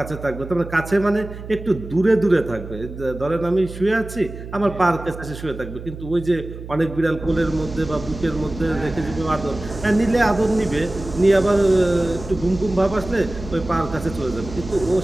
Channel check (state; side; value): noise; right; hum, 12 dB below the sound